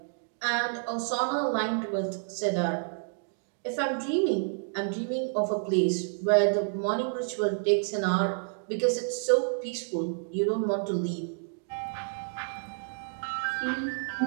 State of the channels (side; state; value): left; silent; digital silence